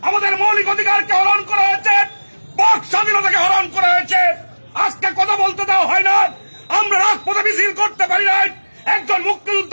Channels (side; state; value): both; inverted; correlation -1.00